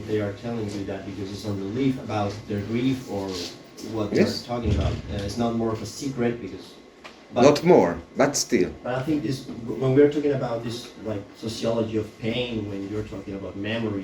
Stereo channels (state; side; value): identical; both; correlation 1.00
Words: they are telling you that because it's a relief about their grief or what Yes. they're talking about. It's not more of a secret because. Not more, but still. But I think this, when we're talking about this, like sociology of pain, when you're talking about